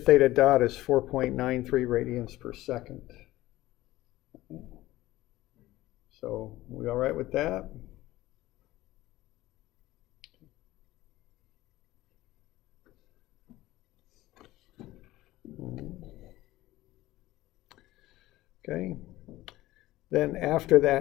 theta dot as 4.93 radians per second. So we all right with that? Okay. Then after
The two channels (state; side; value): quieter; right; 16.8 dB